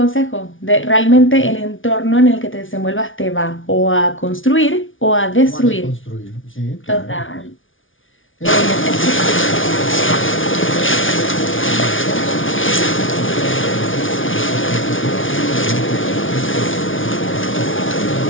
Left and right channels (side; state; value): right; late; 0.57 ms